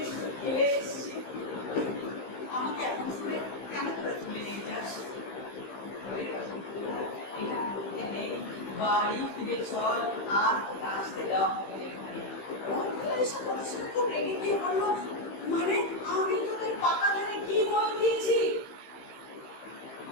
খেলে এসেছি, আমাকে এখন শুনে কেন করে তুলে নিয়ে যাস? বাড়ি ফিরে চল, আর আসতে দেওয়া হবে এখানে। খুব রেগে গিয়ে বললো মানে আমি তোদের পাকা ধারে কি বল দিয়েছি?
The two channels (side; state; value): right; late; 15 ms